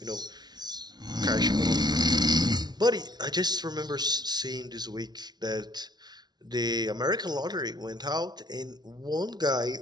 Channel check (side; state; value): left; late; 0.20 ms